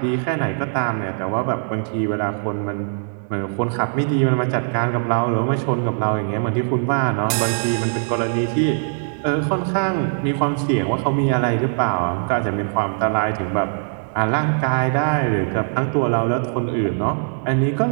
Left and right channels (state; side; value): silent; left; digital silence